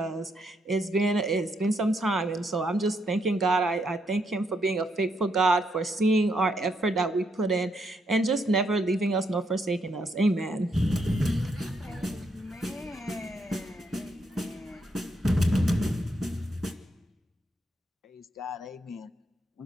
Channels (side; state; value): both; normal; correlation 0.77